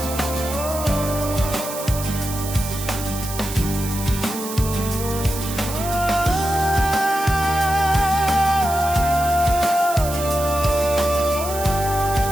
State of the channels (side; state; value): right; noise; hiss, 9 dB below the sound